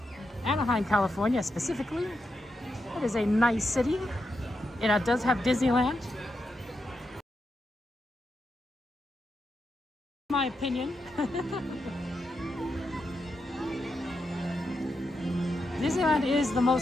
Anaheim, California specifically. It is a nice city. It does have Disneyland. My opinion. Disneyland is the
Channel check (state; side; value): normal; both; correlation 0.85